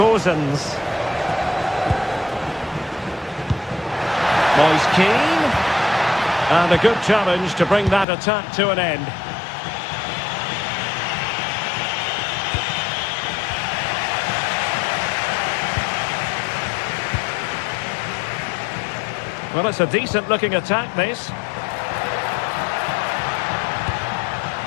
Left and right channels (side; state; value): right; drops out; at 8.1 s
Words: Gozens. Moise Keane. And a good challenge to bring that attack to an end. Well, it's a decent-looking attack, this.